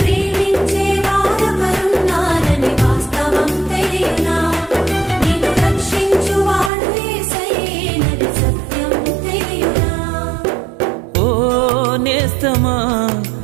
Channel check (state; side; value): drops out; left; at 6.7 s